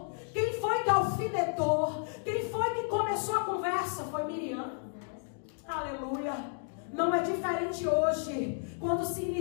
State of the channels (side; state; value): right; silent; 56 dB below the other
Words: Quem foi que alfinetou? Quem foi que começou a conversa? Foi Miriam. Aleluia. Não é diferente hoje, quando se